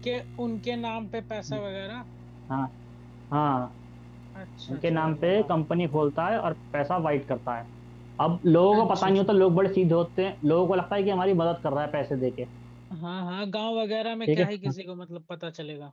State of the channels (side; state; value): both; identical; correlation 1.00